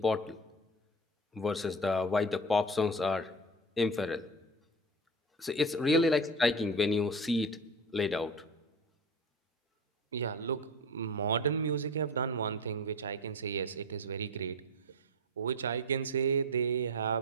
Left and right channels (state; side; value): normal; both; correlation 0.29